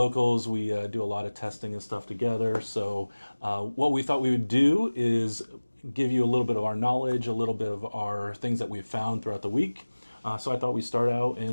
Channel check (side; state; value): both; inverted; correlation -1.00